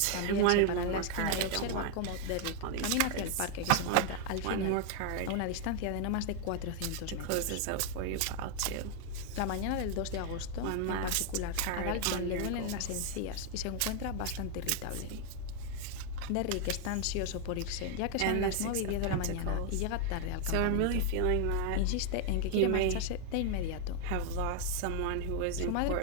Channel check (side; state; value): both; different; correlation 0.00